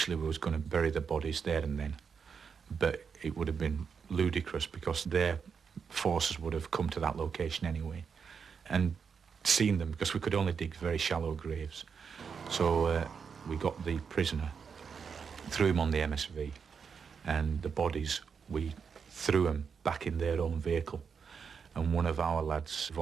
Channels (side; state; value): left; quieter; 6.2 dB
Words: we was going to bury the bodies there and then, but it would have been ludicrous because their forces would have come to that location anyway and seen them, because we could only dig very shallow graves. So we got the prisoner, threw him on the MSV, and the bodies, we threw them back in their own vehicle, and one of our lads